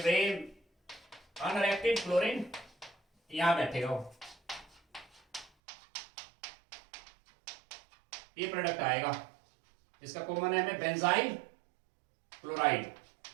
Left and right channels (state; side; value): drops out; left; at 5.5 s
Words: अनरिएक्टेड क्लोरीन यहां बैठेगा वो, ये प्रोडक्ट आएगा, इसका कॉमन नेम है बेंजाइल क्लोराइड।